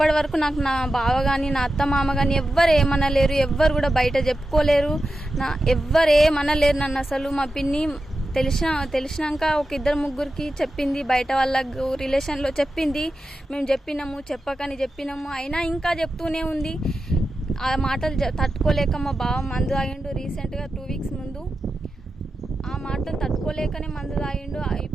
వరకు నాకు నా బావ కానీ నా అత్త మామ కానీ ఎవ్వరు ఏమనలేరు, ఎవ్వరు కూడా బయట చెప్పుకోలేరు, ఎవ్వరు ఏమనలేరు నన్ను అసలు. మా పిన్ని తెలిసినాక ఒక ఇద్దరు ముగ్గురికి చెప్పింది, బయట వాళ్ళకు రిలేషన్లో చెప్పింది. మేము చెప్పకని చెప్పినాము, అయినా ఇంకా చెప్తూనే ఉంది. ఆ మాటలు తట్టుకోలేక మా బావ మందు తాగిండు రీసెంట్గా 2 వీక్స్ ముందు. ఆ మాటలు తట్టుకోలేకనే మందు తాగిండు.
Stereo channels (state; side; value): normal; both; correlation 0.91